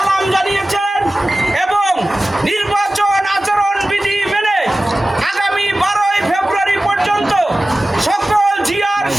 জানিয়েছেন এবং নির্বাচন আচরণ বিধি মেনে আগামী 12ই ফেব্রুয়ারি পর্যন্ত সকল জিয়ার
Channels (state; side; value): normal; both; correlation 0.96